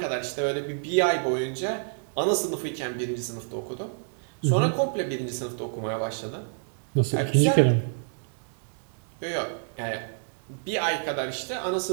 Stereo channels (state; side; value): silent; left; digital silence